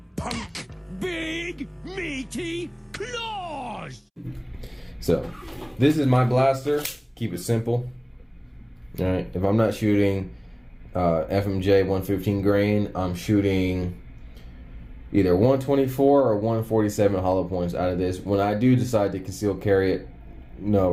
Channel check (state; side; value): identical; both; correlation 1.00